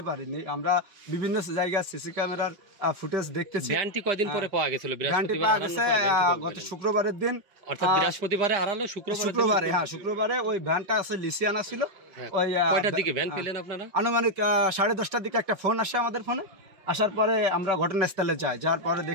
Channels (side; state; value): left; late; 5.5 ms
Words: পারিনি। আমরা বিভিন্ন জায়গায় সিসি ক্যামেরার ফুটেজ দেখতেছি। ভ্যানটি কয়দিন পরে পাওয়া গেছিল? গত শুক্রবারের দিন, অর্থাৎ বৃহস্পতিবারে হারালো, শুক্রবারে, হ্যাঁ, শুক্রবারে ওই ভ্যানটা আছে লিসিয়ানা ছিল। ওই কয়টার দিকে ভ্যান পেলেন আপনারা? আনুমানিক 10:30টার দিকে একটা ফোন আসে আমাদের ফোনে। আসার পরে আমরা ঘটনাস্থলে যাই, যার পরে